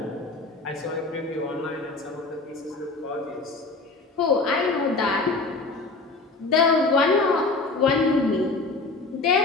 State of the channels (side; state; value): right; quieter; 3.6 dB